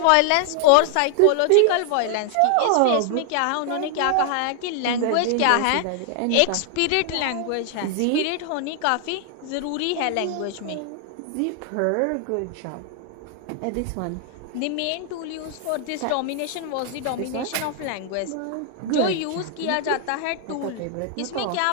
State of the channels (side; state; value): both; different; correlation 0.00